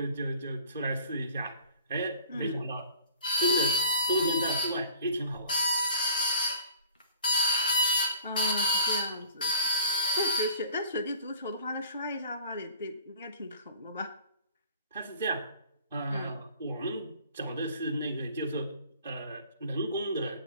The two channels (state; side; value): inverted; both; correlation -0.50